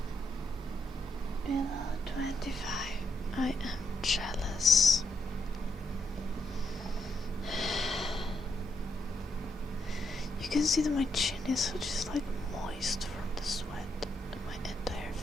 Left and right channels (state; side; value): normal; both; correlation 0.79